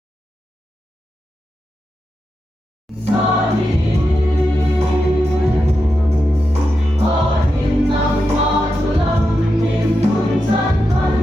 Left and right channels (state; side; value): normal; both; correlation 0.88